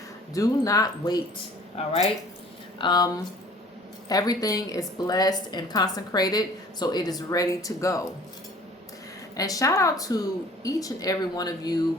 do not wait. All right. Everything is blessed and consecrated, so it is ready to go. And shout out to each and every one of you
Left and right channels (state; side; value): normal; both; correlation 0.51